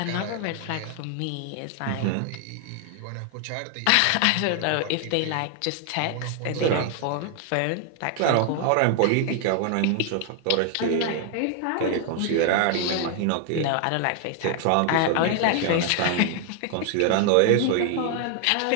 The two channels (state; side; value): different; both; correlation 0.00